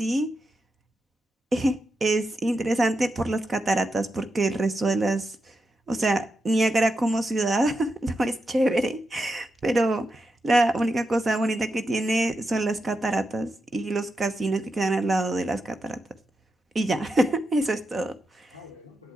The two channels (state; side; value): normal; both; correlation 0.87